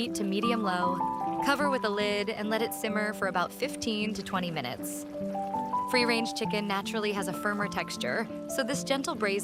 to medium-low, cover with a lid, and let it simmer for about 15 to 20 minutes. Free-range chicken naturally has a firmer texture, so this gentle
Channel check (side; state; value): both; identical; correlation 1.00